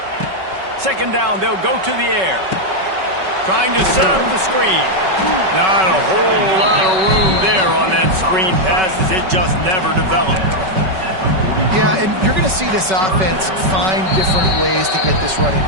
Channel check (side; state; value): left; late; 5.3 ms